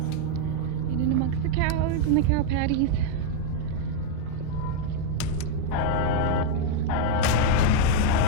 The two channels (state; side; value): different; both; correlation 0.00